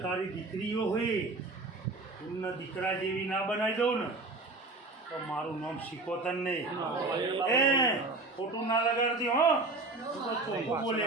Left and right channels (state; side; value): quieter; left; 3.3 dB